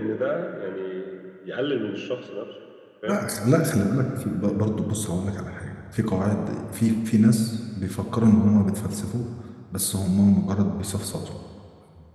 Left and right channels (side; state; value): both; identical; correlation 1.00